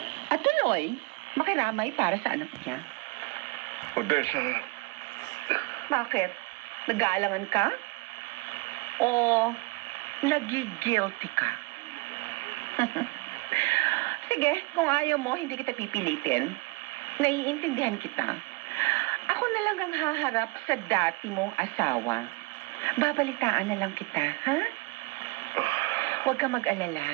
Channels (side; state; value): left; quieter; 25.5 dB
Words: At tuloy, makiramay para sa anak niya. Odessa, Bakit? Nag-aalangan ka? O nagigilty ka? Sige, kung ayaw mo, hindi kita pipilitin. Naiintindihan kita. Ako na lang ang haharap sa dati mong asawa. Babalitaan na lang kita, ha? Huwag ka